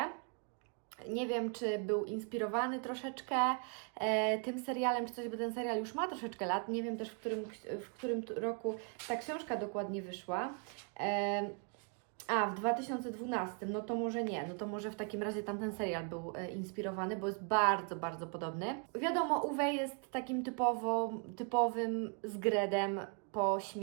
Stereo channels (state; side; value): quieter; left; 39.6 dB